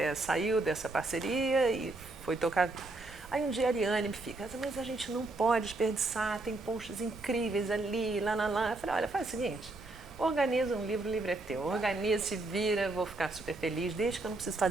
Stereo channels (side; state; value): left; quieter; 3.0 dB